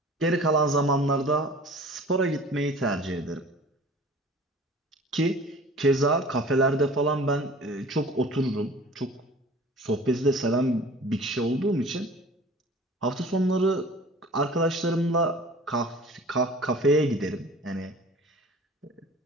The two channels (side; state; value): both; normal; correlation 0.45